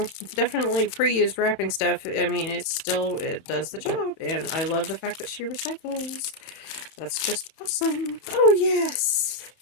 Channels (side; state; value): right; late; 31 ms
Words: definitely pre-used wrapping stuff, I mean, it's still, it does the job, and I love the fact that she recycles. That's just awesome. Oh, yes!